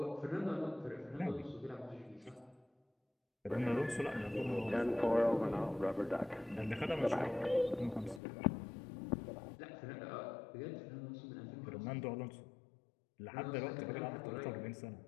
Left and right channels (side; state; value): right; drops out; at 8.2 s